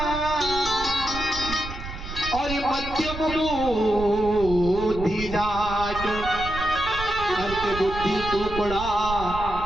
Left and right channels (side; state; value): right; noise; rumble, 9 dB below the sound